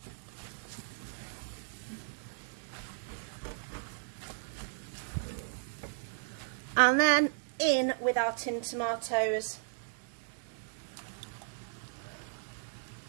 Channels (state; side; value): silent; left; digital silence